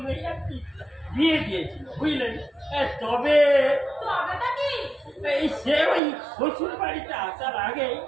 আর কি বিয়ে দিয়েছিল, বুঝলেন। তবে তবেটা কি? এই সে ওই শ্বশুর বাড়িতে আসার আগে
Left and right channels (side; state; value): left; drops out; at 6.0 s